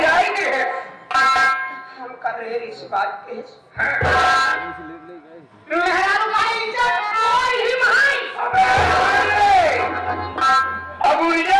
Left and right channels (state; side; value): identical; both; correlation 1.00